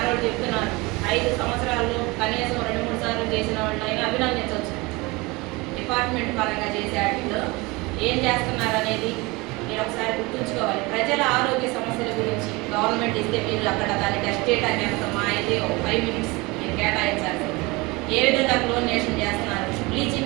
వాళ్ళు చెప్తున్నాను. 5 సంవత్సరాల్లో కనీసం 2-3 సార్లు చేసిన వాళ్ళు అయినా అభినందించవచ్చు. డిపార్ట్మెంట్ పరంగా చేసే వాటిలో ఏం చేస్తున్నారు అనేది మీరు ఒకసారి గుర్తుంచుకోవాలి. ప్రజల ఆరోగ్య సమస్యల గురించి గవర్నమెంట్ ఇస్తే మీరు అక్కడ దాన్ని టెస్ట్ చేయడానికి ఎంత మా అయితే ఒక 5 మినిట్స్ మీరు కేటాయించాలి. ఏ విధంగా క్లోరినేషన్ చేస్తున్నారు,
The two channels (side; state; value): left; quieter; 24.1 dB